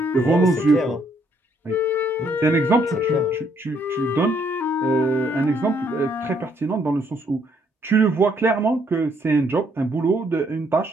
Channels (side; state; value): both; normal; correlation 0.69